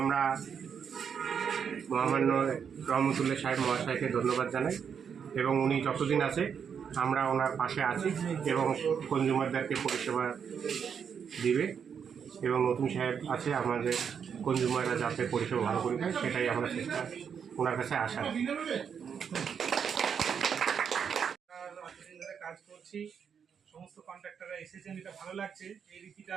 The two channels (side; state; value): left; quieter; 7.2 dB